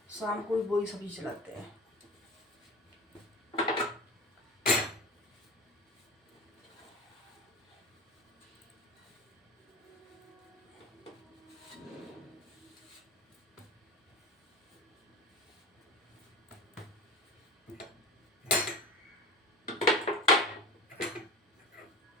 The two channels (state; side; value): normal; both; correlation 0.32